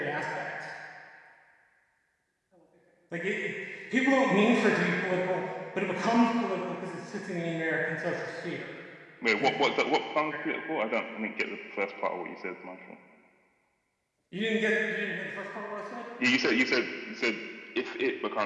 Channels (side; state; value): both; identical; correlation 1.00